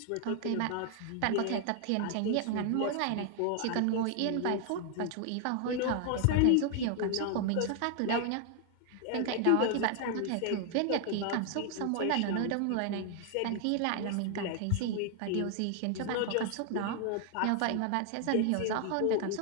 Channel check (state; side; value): different; both; correlation 0.00